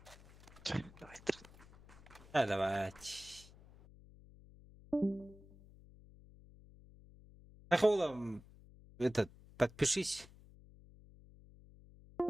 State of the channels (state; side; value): noise; left; hum, 22 dB below the sound